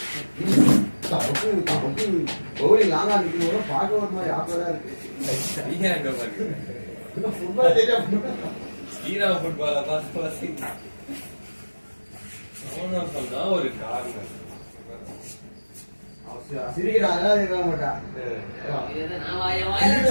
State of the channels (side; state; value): both; inverted; correlation -1.00